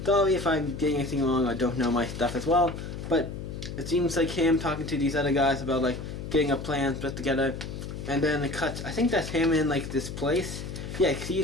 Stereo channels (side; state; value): left; noise; hum, 8 dB below the sound